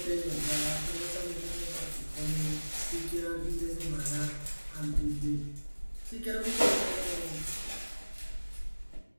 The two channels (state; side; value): inverted; both; correlation -1.00